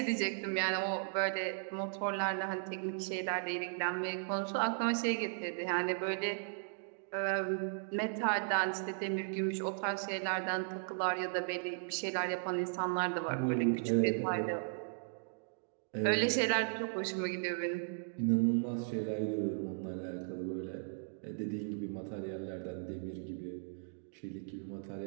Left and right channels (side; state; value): left; silent; digital silence